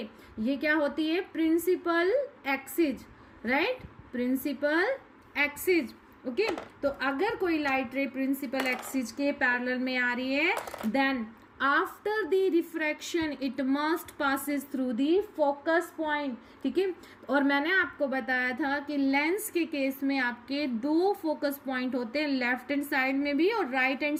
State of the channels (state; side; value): identical; both; correlation 1.00